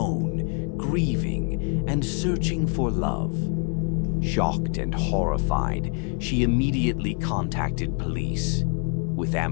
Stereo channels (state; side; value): quieter; right; 38.9 dB